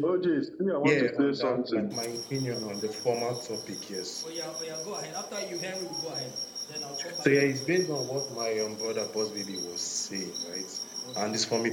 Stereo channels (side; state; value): both; identical; correlation 1.00